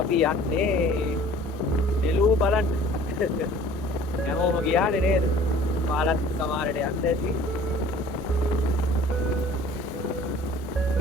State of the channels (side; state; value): both; normal; correlation 0.49